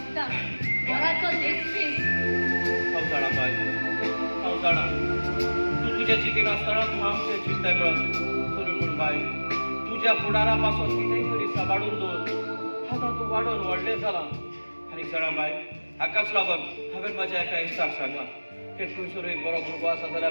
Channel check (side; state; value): both; inverted; correlation -1.00